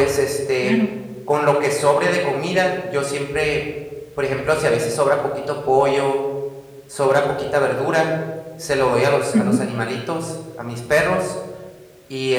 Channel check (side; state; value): both; identical; correlation 1.00